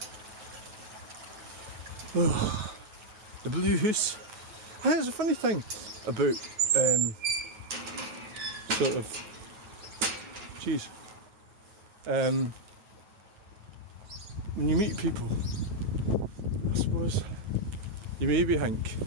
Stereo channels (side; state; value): left; late; 9.2 ms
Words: Oh, the blue house. I think it's a funny thing about sort of when you meet people, I suppose you maybe think